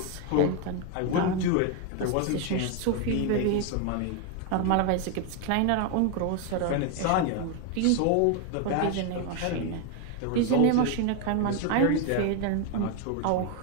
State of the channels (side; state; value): both; different; correlation 0.01